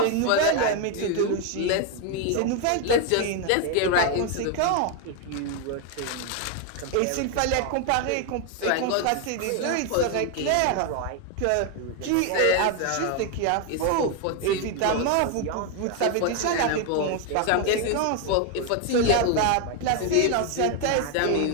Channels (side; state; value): both; different; correlation 0.01